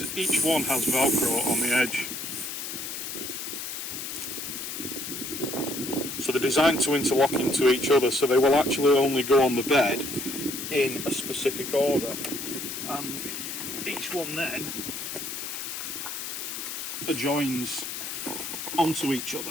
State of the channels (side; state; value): left; noise; hiss, 6 dB below the sound